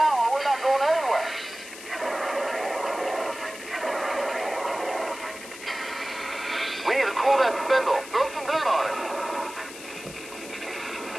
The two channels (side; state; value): left; noise; hiss, 14 dB below the sound